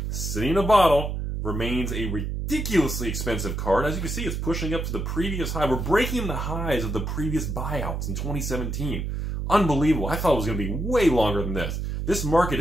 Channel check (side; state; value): right; noise; hum, 3 dB below the sound